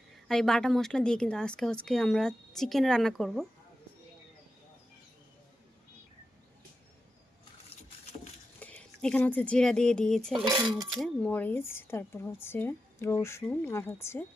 আর এই বাটা মশলা দিয়ে কিন্তু আজকে আমরা চিকেন রান্না করব। এখানে জিরা দিয়ে দিয়েছে, এখানে মরিচ, তারপর রসুন আর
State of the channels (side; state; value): both; normal; correlation 0.90